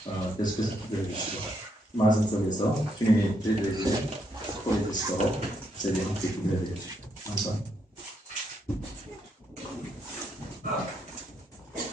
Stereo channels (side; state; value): both; normal; correlation 0.77